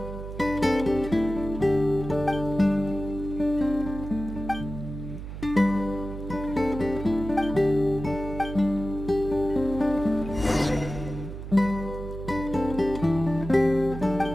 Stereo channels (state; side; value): noise; right; hum, 9 dB below the sound